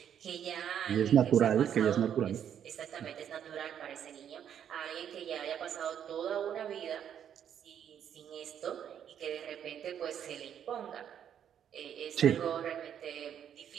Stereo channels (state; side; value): quieter; left; 9.1 dB